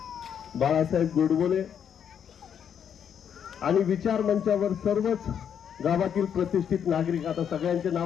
बाळासाहेब गोडबोले आणि विचार मंचावर सर्वच गावातील प्रतिष्ठित नागरिक. आता सगळ्यांचे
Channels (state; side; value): quieter; right; 8.3 dB